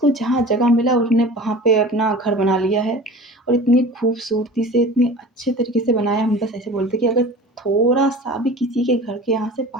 जहाँ जगह मिला उसने वहाँ पे अपना घर बना लिया है और इतनी खूबसूरती से, इतने अच्छे तरीके से बनाया। हम बस ऐसे बोलते कि अगर थोड़ा-सा भी किसी के घर के यहाँ से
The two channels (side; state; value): both; normal; correlation 0.39